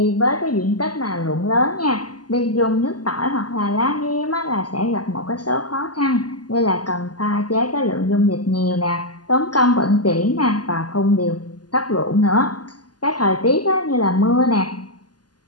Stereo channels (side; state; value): right; late; 0.70 ms